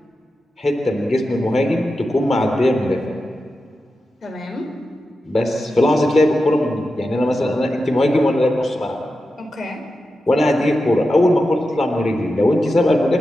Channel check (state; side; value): normal; both; correlation 0.91